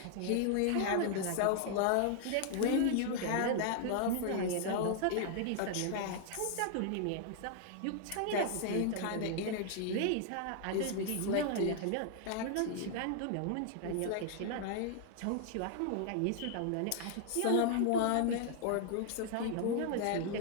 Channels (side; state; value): both; different; correlation 0.00